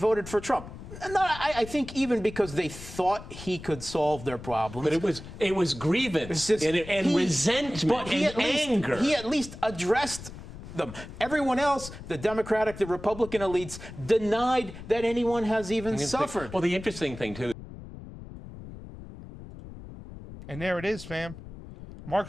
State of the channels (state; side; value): noise; left; rumble, 13 dB below the sound